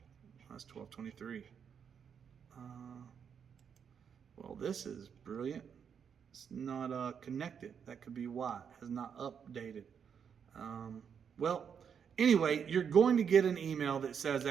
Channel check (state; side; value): quieter; left; 7.3 dB